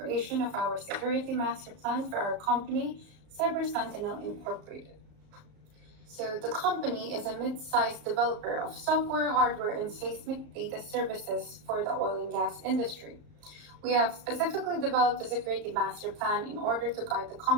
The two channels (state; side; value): late; left; 35 ms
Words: of our security master plan for our company, Cyber Sentinel Incorporated. So the company is a mid-sized developer of software, hardware, and seismic data services for the oil and gas industry. We have specifically developed a security master plan in order to guide the